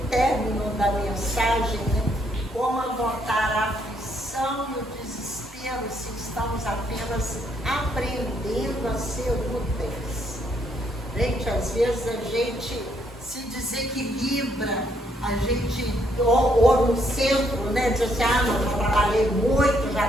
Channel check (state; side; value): normal; both; correlation 0.72